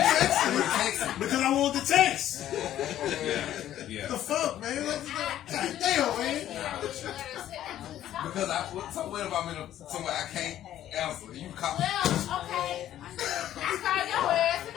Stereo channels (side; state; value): right; quieter; 12.1 dB